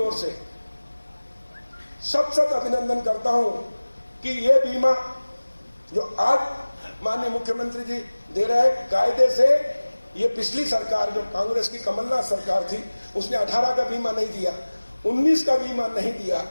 से सत अभिनंदन करता हूं कि ये बीमा जो आज माननीय मुख्यमंत्री जी दे रहे हैं, कायदे से ये पिछली सरकार जो कांग्रेस की कमलनाथ सरकार थी उसने 18 का बीमा नहीं दिया, 19 का बीमा नहीं दिया।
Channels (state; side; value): inverted; both; correlation -1.00